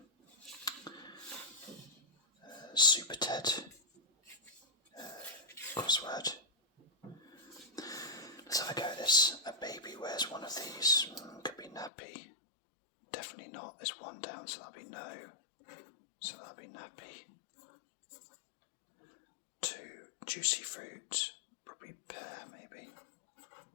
Super Ted crossword. Let's have a go at this. A baby wears one of these. Could be nappy. Definitely not. There's one down, so that'll be no. So that'll be nappy. 2, juicy fruit. Probably pear, maybe.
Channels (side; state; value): right; drops out; at 11.9 s